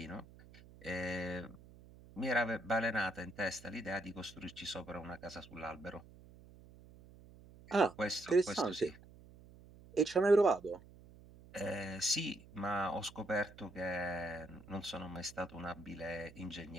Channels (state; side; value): noise; right; hum, 21 dB below the sound